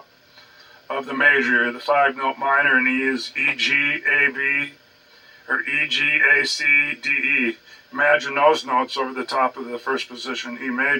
of the major. The 5-note minor in E is E, G, A, B, or E, G, A, C, D, E. Imagine those notes over the top of the first position E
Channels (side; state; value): both; identical; correlation 1.00